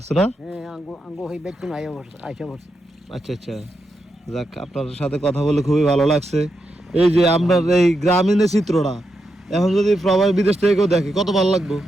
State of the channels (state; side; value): normal; both; correlation 0.85